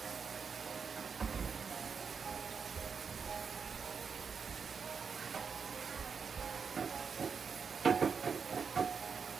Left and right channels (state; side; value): quieter; left; 5.9 dB